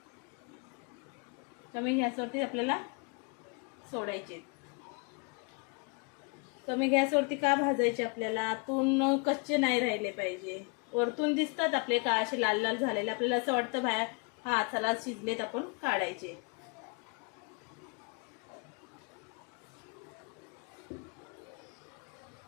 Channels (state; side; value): quieter; right; 33.9 dB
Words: कमी गॅसवरती आपल्याला सोडायचे। कमी गॅसवरती का भाजायचे, आपल्याला आतून कच्चे नाही राहिले पाहिजे। वरतून दिसतात आपले का असे लाल लाल झालेले, आपल्याला असं वाटतं बाहेर हा चला शिजलेत, आपण काढायचे।